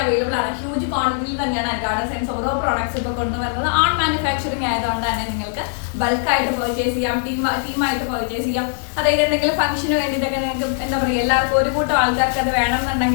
അവൈലബിൾ ആണ്. ഹ്യൂജ് ക്വാണ്ടിറ്റിയിൽ തന്നെയാണ് അൻഗാർഡ് ഡിസൈൻസ് ഓരോ പ്രോഡക്ട്സ് ഇപ്പോൾ കൊണ്ടുവരുന്നത്. ഓൺ മാനുഫാക്ചറിങ് ആയതുകൊണ്ട് തന്നെ നിങ്ങൾക്ക് ബൾക്കായിട്ട് പർച്ചേസ് ചെയ്യാം, ടീമായിട്ട് പർച്ചേസ് ചെയ്യാം. അതായത് എന്തെങ്കിലും ഫംഗ്ഷന് വേണ്ടിയിട്ടൊക്കെ നിങ്ങൾക്ക് എന്താ പറയുക, എല്ലാവർക്കും ഒരു കൂട്ടം ആൾക്കാർക്ക് അത്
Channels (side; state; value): right; silent; digital silence